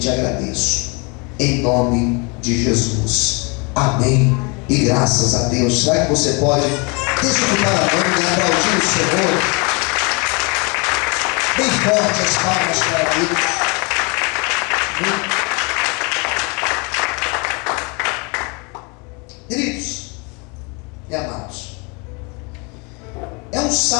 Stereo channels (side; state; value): right; quieter; 31.0 dB